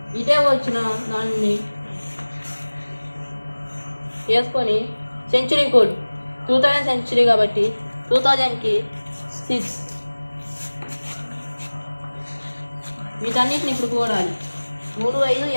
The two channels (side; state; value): both; inverted; correlation -1.00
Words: ఇటే వచ్చిన దాన్ని వేసుకొని సెంచురీ కోడ్ 2000 సెంచురీ కాబట్టి 2000కి 6. వీటన్నిటిని ఇప్పుడు కూడాలి. 3, 5,